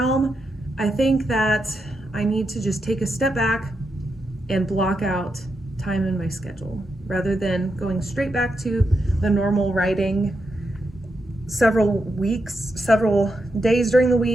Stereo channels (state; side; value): normal; both; correlation 0.84